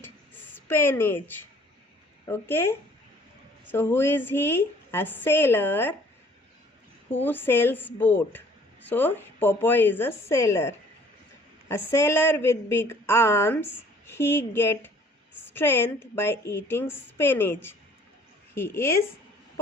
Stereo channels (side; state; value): both; normal; correlation 0.56